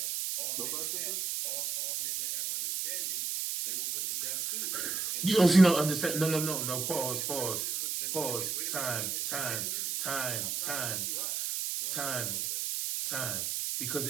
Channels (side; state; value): right; noise; hiss, 2 dB below the sound